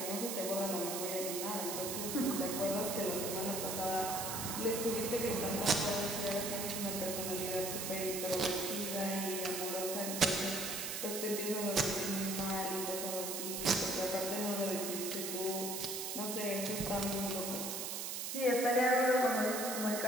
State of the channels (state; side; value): noise; right; hiss, 3 dB below the sound